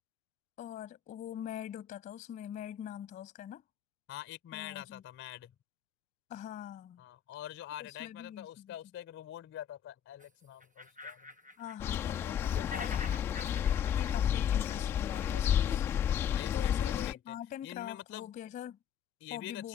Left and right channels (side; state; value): right; quieter; 9.4 dB